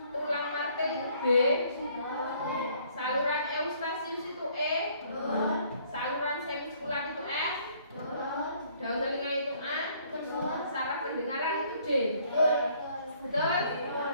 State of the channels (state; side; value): inverted; both; correlation -0.62